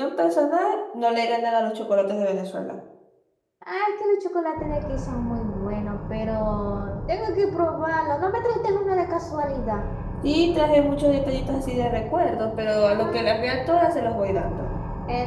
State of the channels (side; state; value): both; identical; correlation 1.00